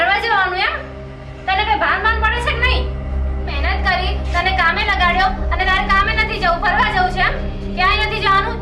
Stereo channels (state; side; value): identical; both; correlation 1.00